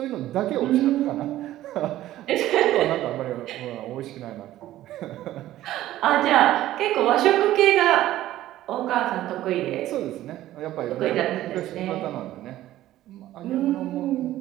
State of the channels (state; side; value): quieter; left; 14.3 dB